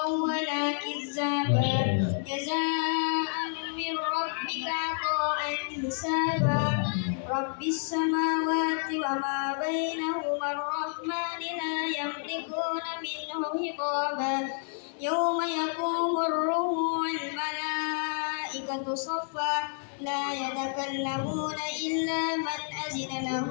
wa la kizzaba jazaa'an min rabbika 'ata'an hisaba rabbis samawati wa ma bainahuma ar-rahmani la yamlikuna minhu hitaba yawma yaqumur ruhu wal malaikatu saffa la yatakallamuna illa man azina lahu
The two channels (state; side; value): silent; right; 58 dB below the other